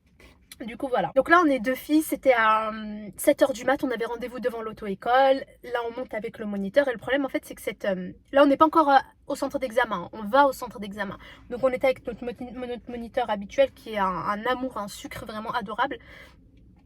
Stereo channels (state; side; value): identical; both; correlation 1.00